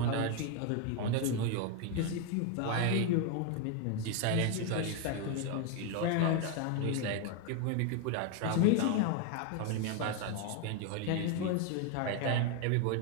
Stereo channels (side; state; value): both; different; correlation 0.01